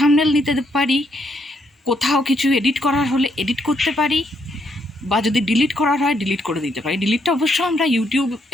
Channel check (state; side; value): normal; both; correlation 0.75